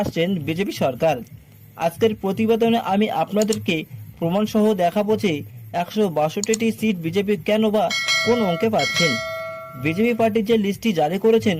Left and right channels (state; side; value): identical; both; correlation 1.00